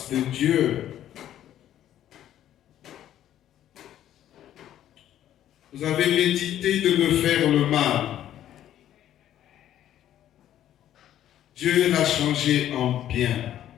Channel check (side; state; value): right; quieter; 11.7 dB